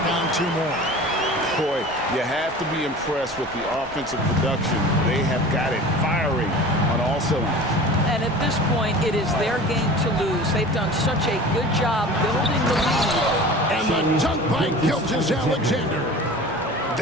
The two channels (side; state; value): both; normal; correlation 0.39